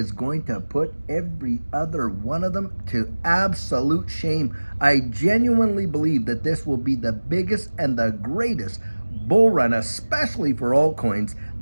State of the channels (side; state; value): both; inverted; correlation -1.00